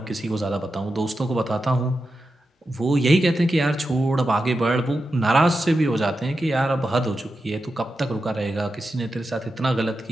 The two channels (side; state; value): both; normal; correlation 0.90